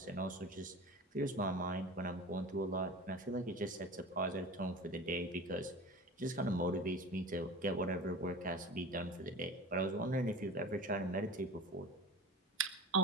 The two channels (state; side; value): normal; both; correlation 0.35